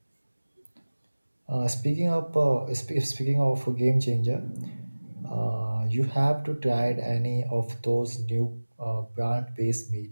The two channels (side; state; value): both; inverted; correlation -1.00